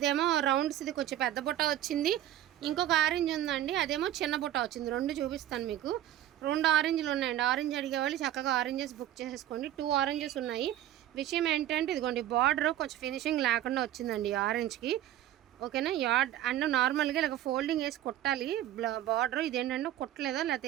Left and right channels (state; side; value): quieter; left; 12.7 dB